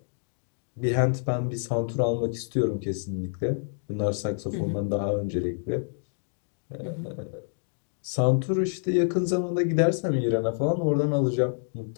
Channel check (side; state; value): right; silent; digital silence